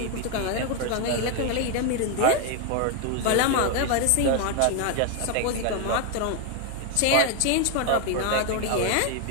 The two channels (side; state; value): both; different; correlation 0.01